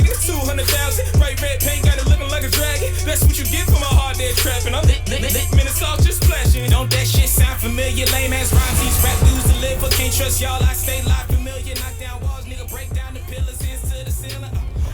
200,000. Bright red paint, got it looking like a dragon. That's what you get for my hard day trapping. I'm lit, minutes off, just flashing. Don't that shit sound familiar? Lame ass rhymes, these rap dudes deliver. Can't trust y'all, I stay live familiar. Knock down walls, nigga, break down the pillars, hands to the ceiling.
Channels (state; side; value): identical; both; correlation 1.00